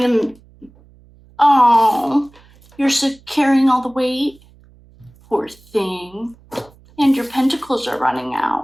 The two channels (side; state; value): right; noise; hum, 28 dB below the sound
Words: Oh, you're carrying all the weight? Poor thing. And your pentacles are running